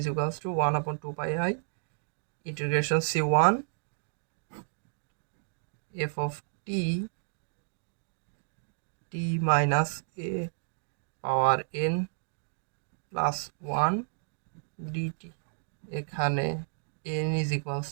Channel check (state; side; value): silent; left; digital silence